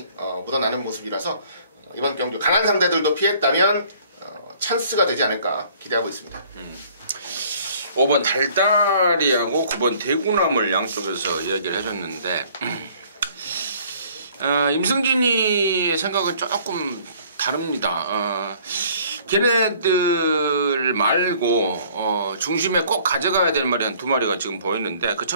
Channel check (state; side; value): inverted; both; correlation -0.56